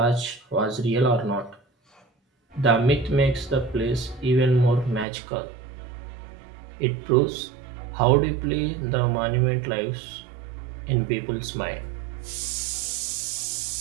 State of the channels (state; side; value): drops out; left; at 5.1 s